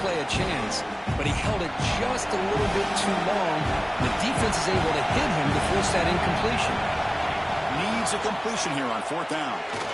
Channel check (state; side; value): identical; both; correlation 1.00